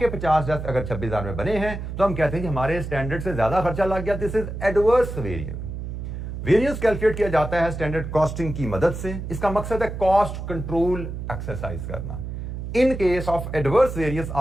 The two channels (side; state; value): right; noise; hum, 7 dB below the sound